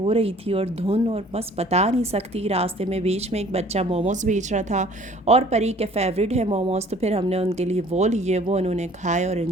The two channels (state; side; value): normal; both; correlation 0.53